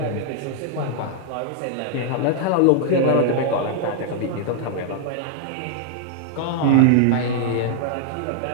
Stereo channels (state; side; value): different; both; correlation -0.01